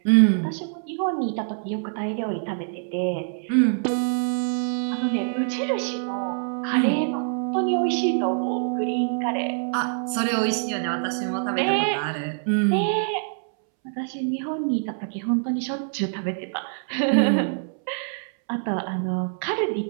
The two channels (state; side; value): silent; left; 62 dB below the other